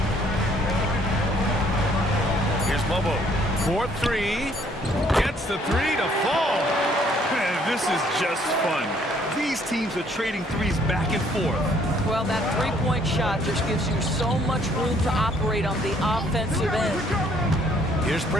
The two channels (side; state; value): both; normal; correlation 0.63